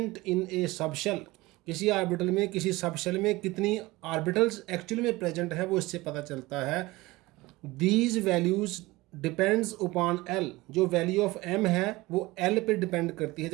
in a subshell. किसी ऑर्बिटल में, किसी सबशेल में कितनी ऑर्बिटल्स एक्चुअली में प्रेजेंट है वो इससे पता चलता है। These values depends upon L। जो वैल्यू ऑफ M है वो L पे डिपेंड करती है।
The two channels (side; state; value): left; quieter; 20.5 dB